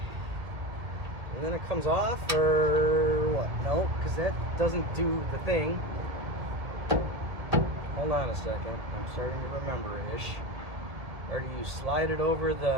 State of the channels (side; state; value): left; late; 1.8 ms